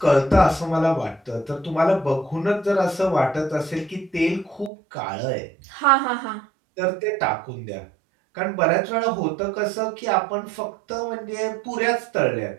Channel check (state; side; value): drops out; left; at 4.7 s